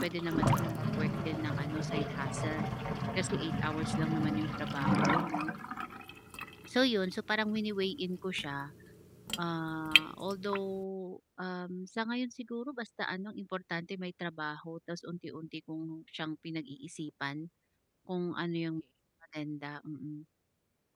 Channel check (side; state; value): both; identical; correlation 1.00